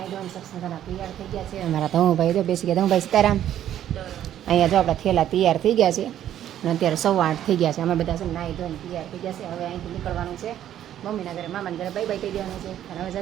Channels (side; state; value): left; quieter; 11.2 dB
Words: ધોઈને સક્ષનગરના તૈયાર થઈ ગયા છે. અમારા ધમુભાઈ જો બેસી ગયા. ધમુભાઈ સીતારામ. અહીંયા જો આપણા થેલા તૈયાર થઈ ગયા છે અને અત્યારે 8:15 થઈ ગયા છે. અમે બધા છે નાઈ ધોઈને તૈયાર થઈ ગયા છે. હવે અહીંથી નીકળવાનું છે મમ્મીના ઘરે, મામાના ઘરે બાય બાય કહી દેવાનું છે અને હવે